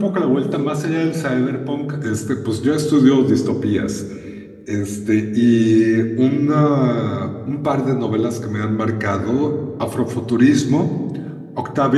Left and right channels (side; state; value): both; identical; correlation 1.00